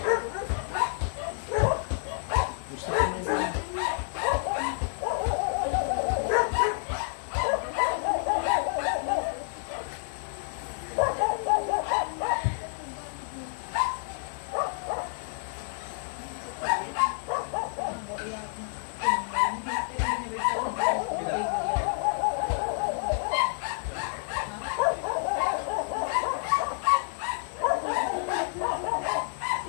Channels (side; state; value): right; silent; digital silence